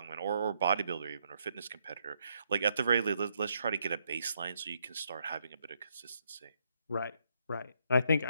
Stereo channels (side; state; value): both; inverted; correlation -0.75